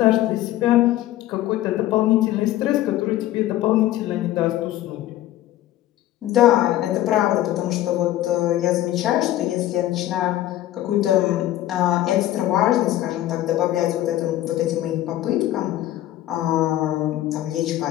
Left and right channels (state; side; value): quieter; right; 14.1 dB